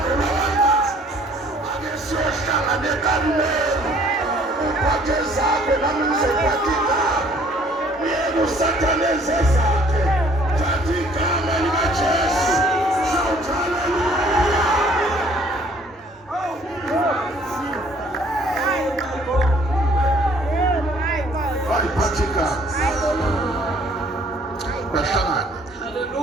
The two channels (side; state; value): both; normal; correlation 0.58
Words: ulawakazi, ake siyohlangana eKarumeli, uphathe zakho nami ngizophatha igama, uyeke uSathane enze zakhe, thatha igama likaJesu. Shout hallelujah. Bayiphathe igama bahlangane.